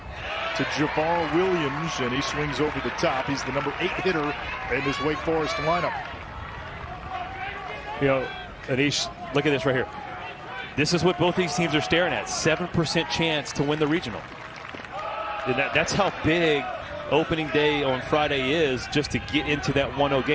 to Javar Williams, and he swings over the top. He's the number 8 hitter in this Wake Forest lineup. You know, Anish, look at this right here. This is what both these teams are staring at. 7% chance to win the regional. And that's how big opening day on Friday is, just to get into that 1-0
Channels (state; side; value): identical; both; correlation 1.00